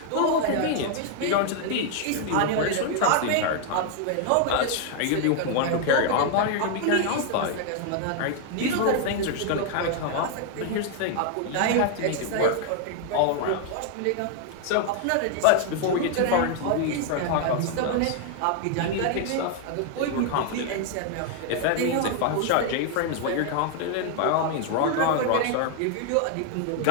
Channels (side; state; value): both; different; correlation 0.00